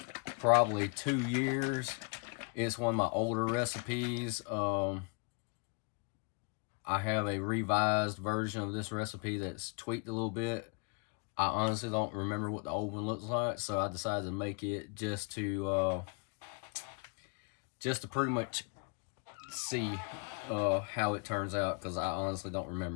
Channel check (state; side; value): quieter; right; 33.2 dB